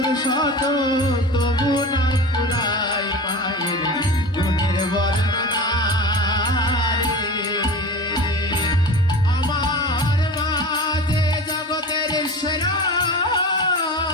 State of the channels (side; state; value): both; normal; correlation 0.33